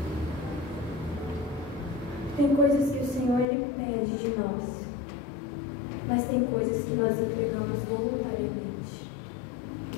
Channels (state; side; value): drops out; right; at 3.5 s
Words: Tem coisas que o Senhor Ele pede de nós, mas tem coisas que nós entregamos voluntariamente.